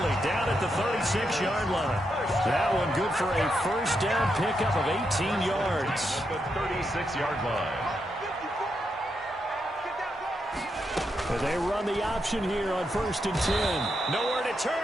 down at the 36-yard line. That one good for a first down pickup of 18 yards. The 36-yard line. But they run the option here on 1st and 10. Nowhere to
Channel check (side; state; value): both; normal; correlation 0.82